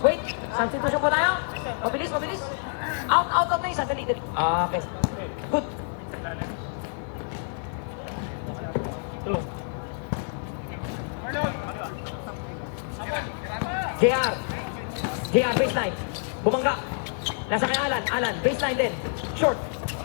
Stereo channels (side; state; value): right; silent; 60 dB below the other